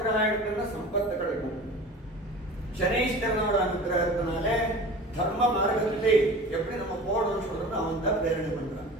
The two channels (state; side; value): normal; both; correlation 0.38